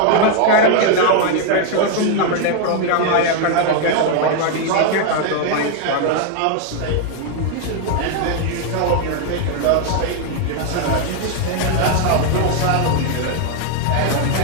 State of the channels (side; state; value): both; different; correlation 0.00